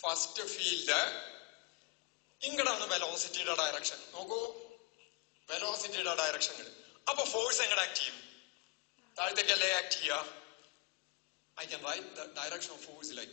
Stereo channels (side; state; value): right; quieter; 27.8 dB